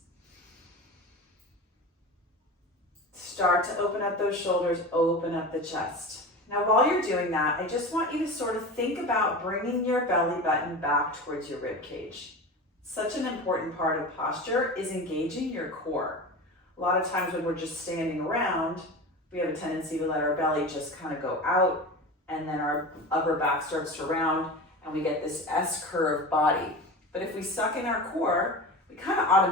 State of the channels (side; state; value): both; normal; correlation 0.30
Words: Start to open up those shoulders, open up the chest. Now while you're doing that, I just want you to sort of think about bringing your belly button back towards your rib cage. Such an important part of posture is engaging your core. A lot of times when we're just standing around, we have a tendency to let our belly just kind of go out, and then our upper back starts to round and we get this S-curve body. But if we suck in our core, we kind of